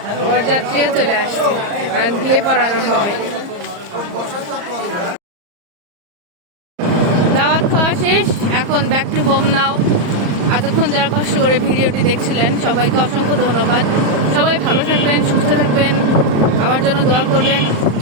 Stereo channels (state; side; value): late; left; 34 ms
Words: বরযাত্রীও চলে আসছে আর বিয়ে পড়ানো হবে। দাওয়াত খাওয়া শেষ, এখন ব্যাক টু হোম নাও। এতক্ষণ যারা কষ্ট করে ভিডিওটি দেখছিলেন সবাইকে অসংখ্য ধন্যবাদ। সবাই ভালো থাকবেন, সুস্থ থাকবেন, আমার জন্য দোয়া করবেন।